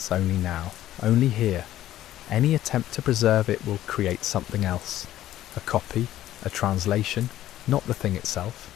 only now, only here. Any attempt to preserve it will create something else. A copy, a translation, not the thing itself.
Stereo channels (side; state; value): right; quieter; 13.4 dB